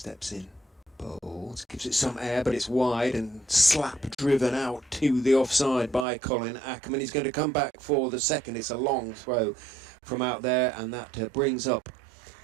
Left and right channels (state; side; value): drops out; left; at 6.1 s